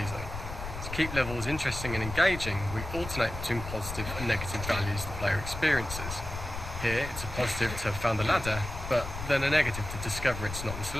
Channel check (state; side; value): noise; left; rumble, 8 dB below the sound